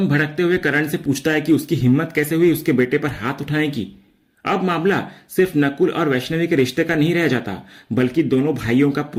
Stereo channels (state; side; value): identical; both; correlation 1.00